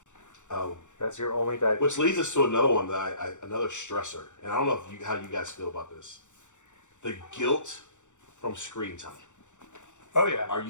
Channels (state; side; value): late; right; 0.85 ms